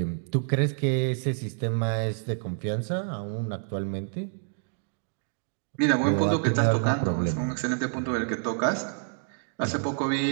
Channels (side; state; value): left; silent; digital silence